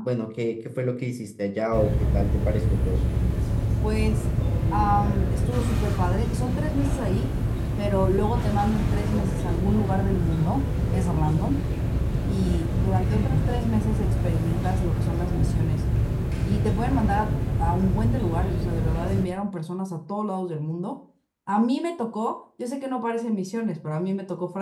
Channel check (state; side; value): identical; both; correlation 1.00